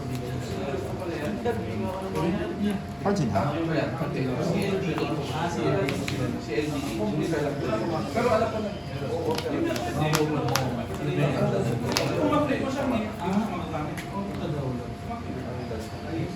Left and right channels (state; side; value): identical; both; correlation 1.00